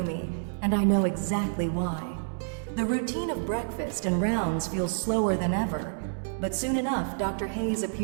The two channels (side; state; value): left; silent; digital silence